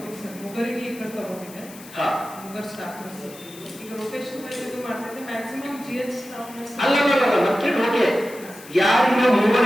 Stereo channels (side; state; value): left; noise; hiss, 18 dB below the sound